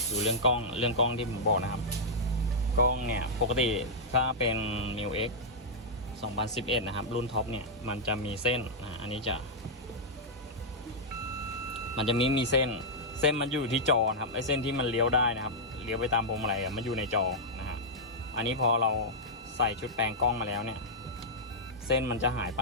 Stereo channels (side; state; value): both; normal; correlation -0.08